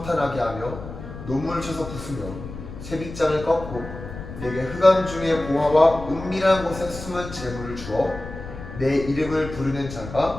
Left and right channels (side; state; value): left; noise; rumble, 11 dB below the sound